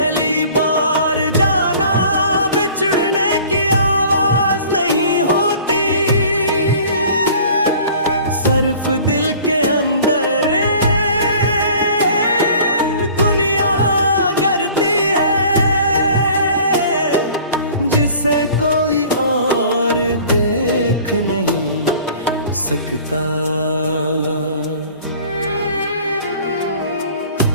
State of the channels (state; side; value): inverted; both; correlation -0.48